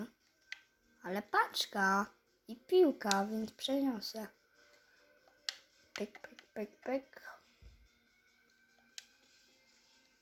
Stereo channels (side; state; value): both; identical; correlation 1.00